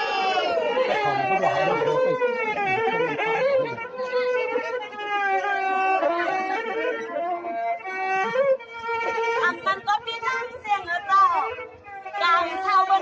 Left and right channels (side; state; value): both; identical; correlation 1.00